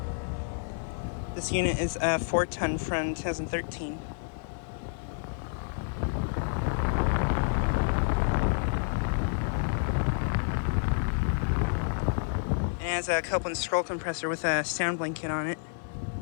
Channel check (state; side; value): silent; right; digital silence